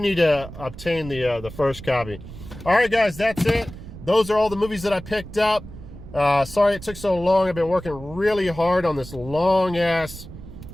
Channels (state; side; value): noise; right; rumble, 14 dB below the sound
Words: to obtain the first copy. All right, guys, that's it. Those are all the movies that I picked up. Sorry it took so long. I've been working really hard on this long-ass